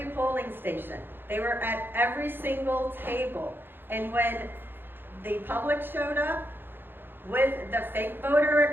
polling station. They were at every single table. And when the public showed up with the fake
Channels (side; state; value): left; late; 0.10 ms